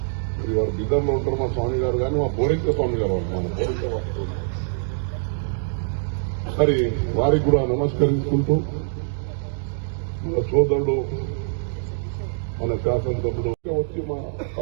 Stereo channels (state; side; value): silent; left; digital silence